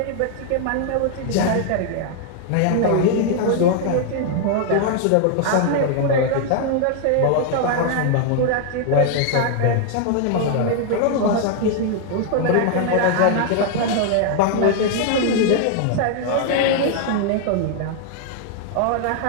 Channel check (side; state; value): both; different; correlation 0.00